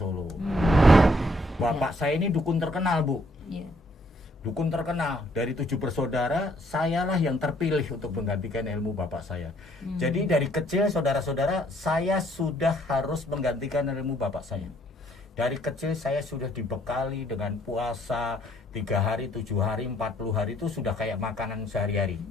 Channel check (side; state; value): both; normal; correlation 0.66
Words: Bapak saya ini dukun terkenal, Bu. Iya. Dukun terkenal. Dari 7 bersaudara, sayalah yang terpilih untuk menggantikan ilmu bapak saya. Jadi dari kecil, saudara-saudara, saya sudah harus menggantikan ilmu bapak saya. Dari kecil saya sudah dibekali dengan puasa 3 hari, 7 hari, 40 hari itu sudah kayak makanan sehari-hari.